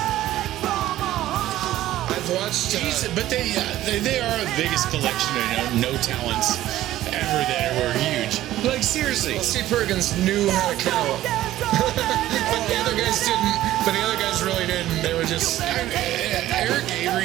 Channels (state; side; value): quieter; left; 14.3 dB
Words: I've watched. But they are the biggest collection of no talents ever that were huge. Like seriously. Well, Steve Perkins knew how to count, but the other guys didn't. But the other guys really didn't. They were just. Eric